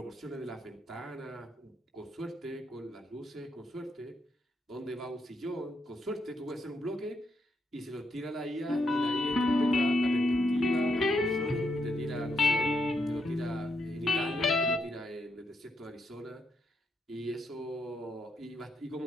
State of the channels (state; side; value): normal; both; correlation 0.79